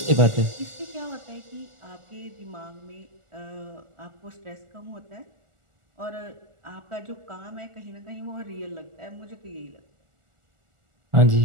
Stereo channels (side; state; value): left; late; 1.4 ms